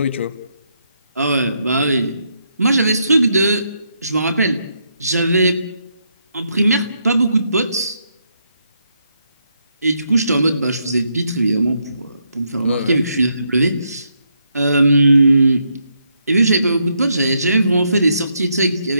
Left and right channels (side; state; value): both; inverted; correlation -0.78